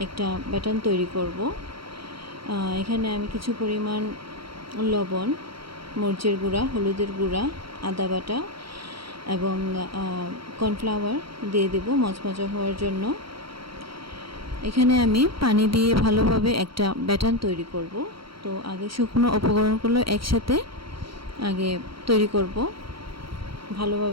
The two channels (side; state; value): left; late; 0.74 ms